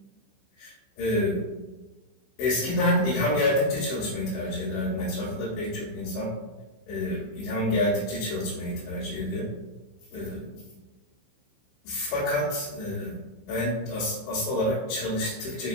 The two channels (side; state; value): right; late; 15 ms